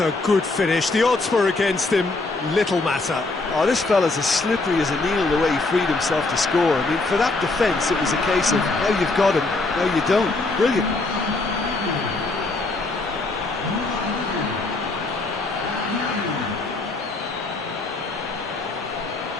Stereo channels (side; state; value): right; quieter; 3.3 dB